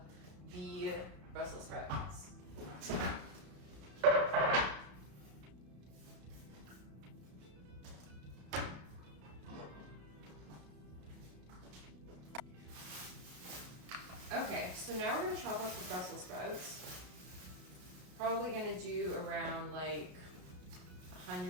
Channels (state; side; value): late; left; 33 ms